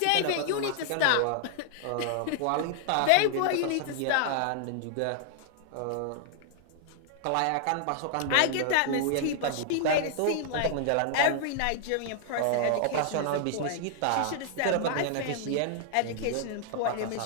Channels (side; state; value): both; different; correlation 0.00